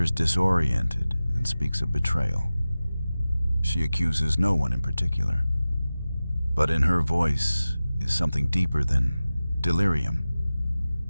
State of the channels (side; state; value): both; inverted; correlation -0.96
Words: disoriented and speaks of betrayal. She accuses no one in particular, but in her voice is something deeper than delirium,